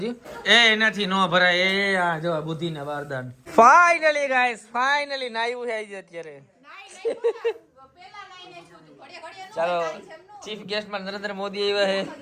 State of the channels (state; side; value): identical; both; correlation 1.00